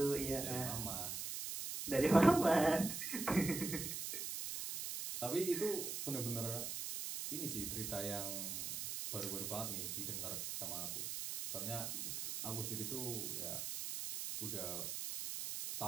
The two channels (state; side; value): noise; right; hiss, 4 dB below the sound